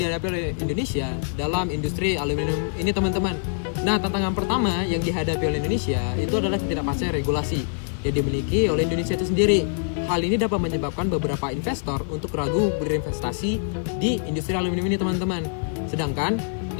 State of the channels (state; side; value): silent; right; digital silence